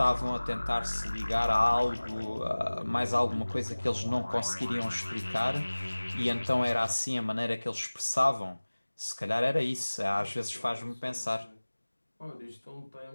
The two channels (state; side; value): inverted; both; correlation -1.00